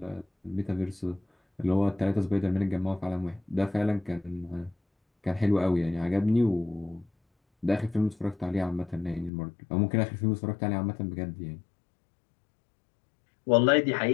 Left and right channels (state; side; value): drops out; right; at 9.3 s